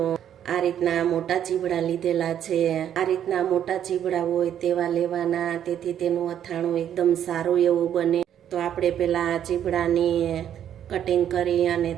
આ રીતના મોટા ચીવડા લીધેલા છે। આ રીતના મોટા ચીવડા હોય તેવા લેવાના, તેથી તેનું અથાણું એકદમ સારું એવું બને। તો આપણે પહેલા આ ચીવડાની કટિંગ કરી અને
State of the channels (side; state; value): left; quieter; 9.9 dB